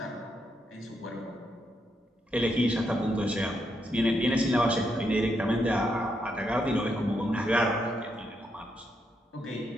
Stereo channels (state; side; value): normal; both; correlation 0.80